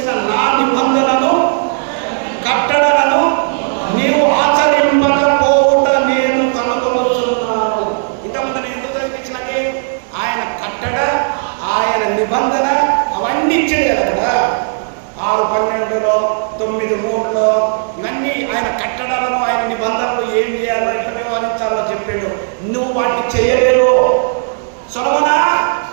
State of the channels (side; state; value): left; silent; digital silence